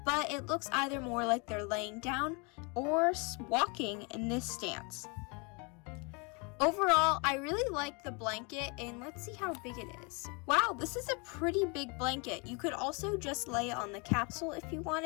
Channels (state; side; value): quieter; right; 31.7 dB